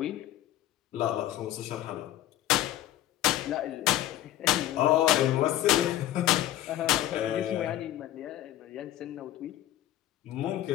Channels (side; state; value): right; quieter; 13.5 dB